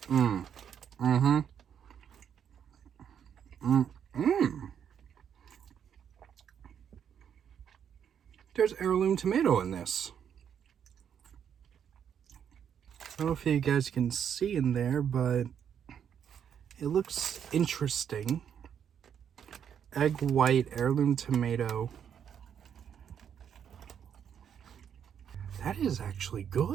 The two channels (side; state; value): left; quieter; 8.4 dB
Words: There's heirloom tomato in this. I don't know if you guys can see in there, but it looks interesting. Egg white, heirloom tomato. That is actually